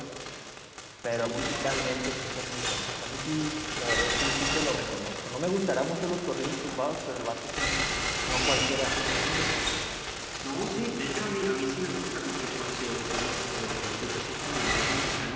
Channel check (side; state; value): both; identical; correlation 1.00